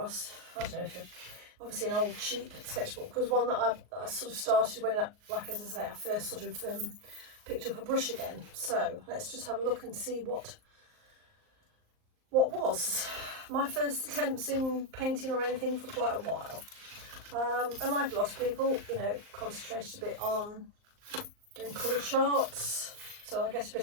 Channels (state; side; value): late; left; 38 ms